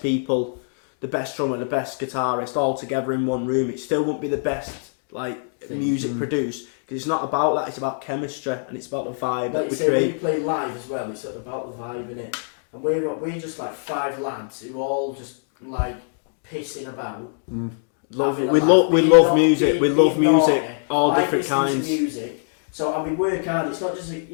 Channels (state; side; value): silent; right; digital silence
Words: people, the best drummer, the best guitarist all together in one room. It still won't be the best music produced, because it's not about that. It's about chemistry and it's about the vibe. Like you say, when you play live as well, it's about the vibe in it. And we're just like 5 lads who all just like pissing about, having a laugh. We love music. We love music. Like listening to music. So and we work hard. It's not just